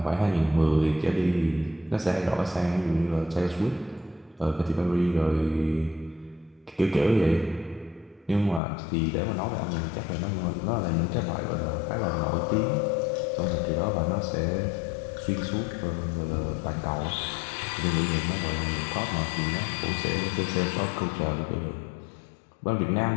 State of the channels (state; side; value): drops out; right; at 8.6 s